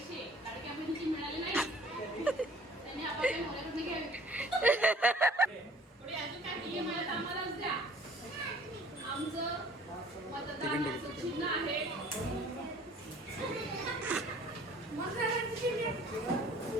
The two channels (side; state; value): both; normal; correlation 0.53